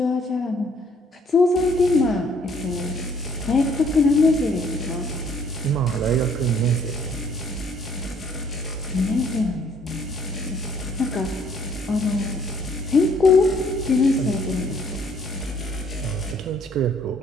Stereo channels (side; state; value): both; normal; correlation 0.62